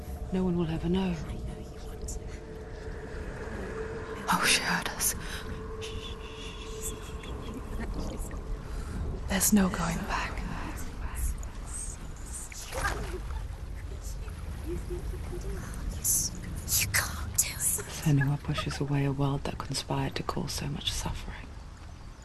No one will ever know. Oh, she heard us. There's no going back. You can't do it. Senua pushes away a world that conspired to cause so much suffering.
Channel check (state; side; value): identical; both; correlation 1.00